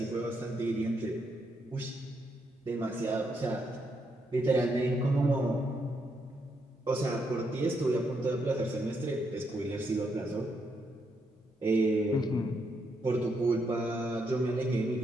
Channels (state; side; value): normal; both; correlation 0.78